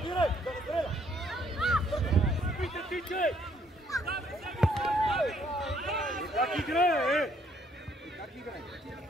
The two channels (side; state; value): both; normal; correlation 0.67